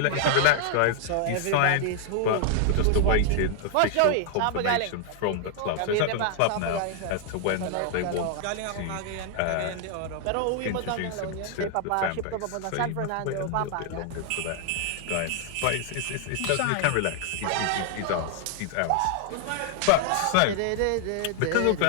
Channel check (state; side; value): different; both; correlation 0.00